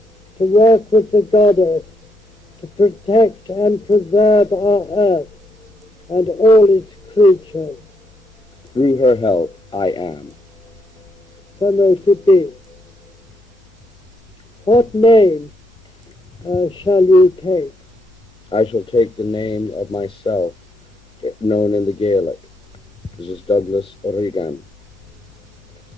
to work with the goddess, to protect and preserve our earth and all its creatures? Through her help, I am. So may it be. What name shall you take? I shall take the name of myself, known in the Gaelic. This is Douglas Reagan.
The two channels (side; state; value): both; normal; correlation 0.77